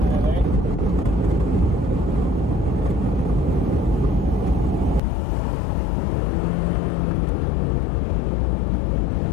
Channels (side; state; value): right; drops out; at 5.0 s